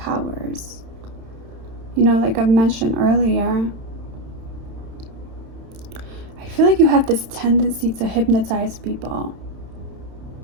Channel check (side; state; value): left; late; 31 ms